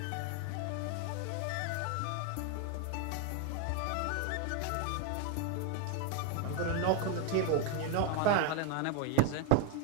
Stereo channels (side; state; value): both; different; correlation 0.01